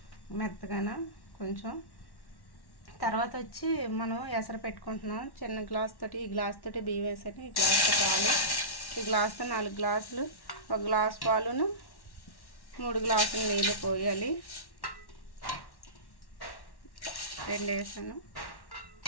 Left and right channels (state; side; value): late; right; 1.1 ms